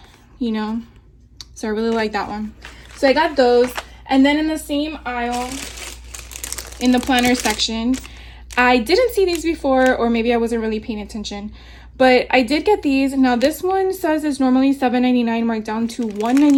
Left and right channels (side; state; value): both; identical; correlation 1.00